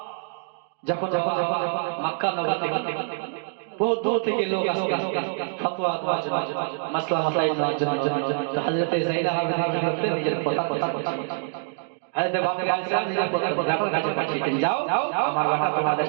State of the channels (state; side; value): silent; left; digital silence